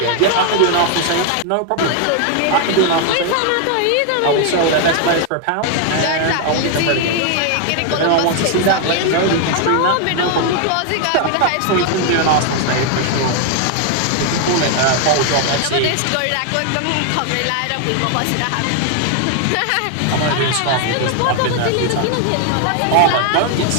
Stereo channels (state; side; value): different; both; correlation 0.00